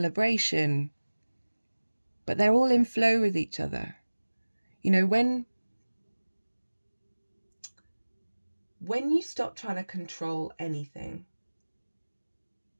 But they're all in flow with each other. You know, when you stop trying to control anything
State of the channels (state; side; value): inverted; both; correlation -1.00